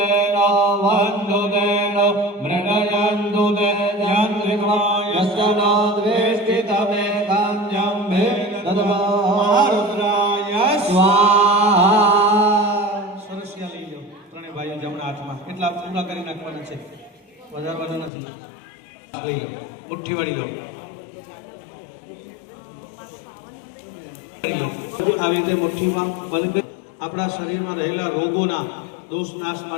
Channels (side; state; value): right; drops out; at 18.1 s